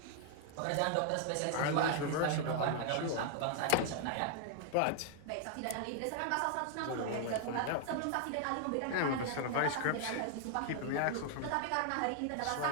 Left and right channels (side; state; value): both; different; correlation 0.00